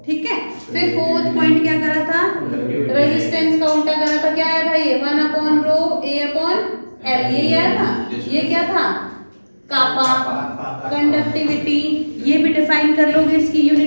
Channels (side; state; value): both; inverted; correlation -1.00